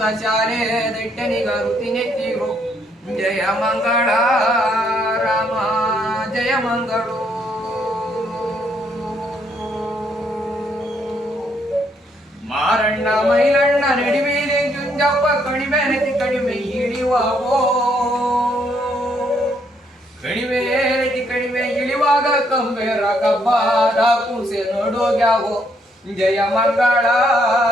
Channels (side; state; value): both; normal; correlation 0.72